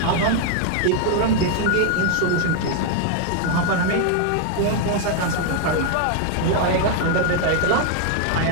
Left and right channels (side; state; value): both; different; correlation 0.00